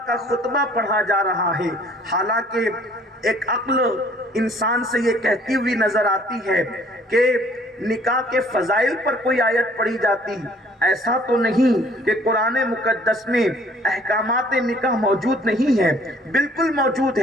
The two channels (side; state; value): both; normal; correlation 0.57